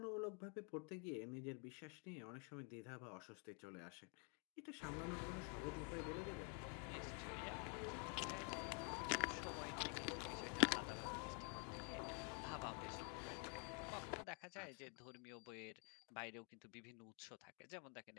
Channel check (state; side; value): quieter; right; 35.8 dB